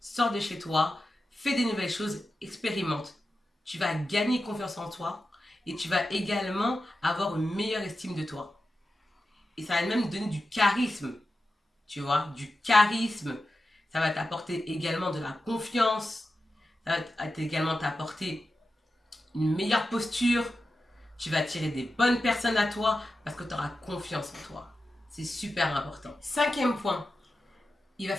sors de chez toi, fais des nouvelles choses, expérimente. Tu vas gagner confiance en toi et tu vas également avoir une meilleure estime de toi. Et ça va même donner du charisme, tu vois, du charisme. Ça va t'apporter également de la confiance. Ça va également t'apporter une meilleure posture. Tu vas attirer des bonnes personnes à toi parce que tu auras confiance en toi. C'est super important. Cinquième point, il va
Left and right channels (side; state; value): both; normal; correlation 0.92